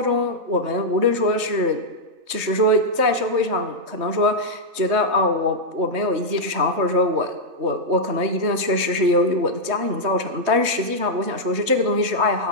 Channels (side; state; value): left; late; 3.2 ms